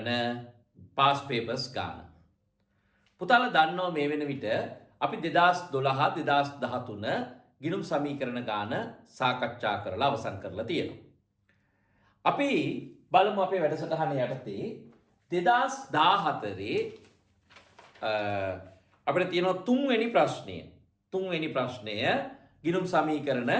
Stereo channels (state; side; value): identical; both; correlation 1.00